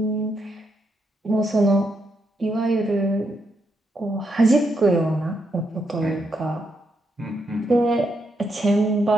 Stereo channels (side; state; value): both; normal; correlation 0.79